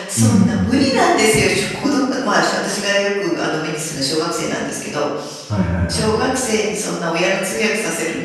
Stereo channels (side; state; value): both; identical; correlation 1.00